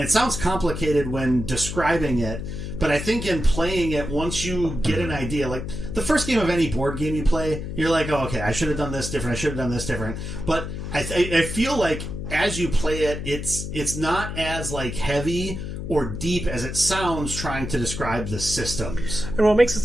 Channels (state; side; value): noise; left; hum, 6 dB below the sound